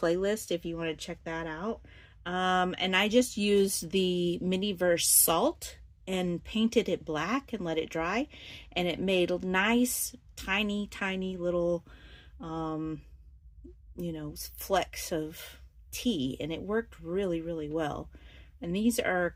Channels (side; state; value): both; identical; correlation 1.00